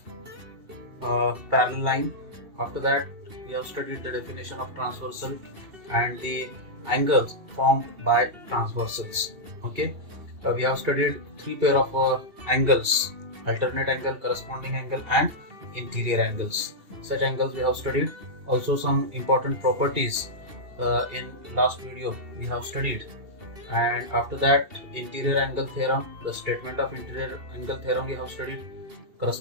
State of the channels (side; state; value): left; late; 2.7 ms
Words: parallel line. After that we have studied the definition of transversal and the angles formed by transversals. Okay, we have studied three pair of angles: alternate angle, corresponding angle, and interior angles. Such angles we have studied. Also some important properties in last video we have studied. And after that, interior angle theorem, the statement of interior angle theorem we have studied,